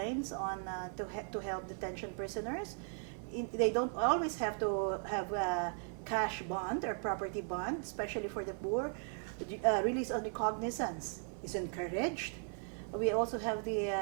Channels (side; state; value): left; silent; 53 dB below the other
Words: on to help detention prisoners. They don't always have to have a cash bond or property bond, especially for the poor. Release on recognizance is encouraged. We also have the